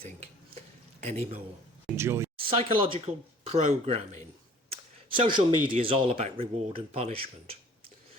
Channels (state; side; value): normal; both; correlation 0.51